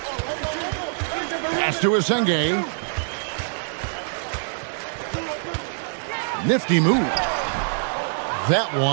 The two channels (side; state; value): left; silent; digital silence